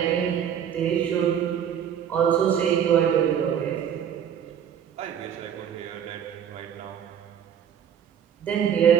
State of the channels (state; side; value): quieter; left; 8.9 dB